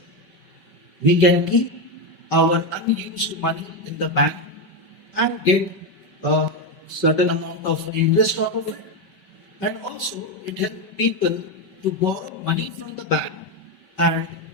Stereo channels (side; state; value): right; late; 5.3 ms